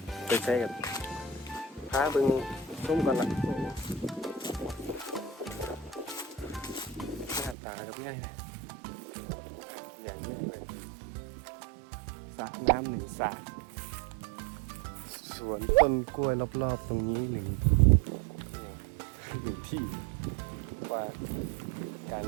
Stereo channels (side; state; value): left; drops out; at 7.6 s